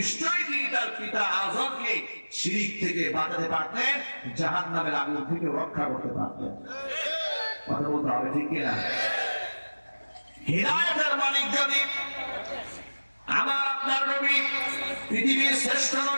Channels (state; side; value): inverted; both; correlation -1.00